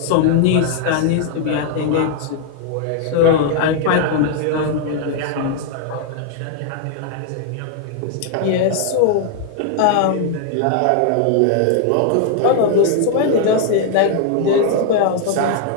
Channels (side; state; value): both; different; correlation 0.00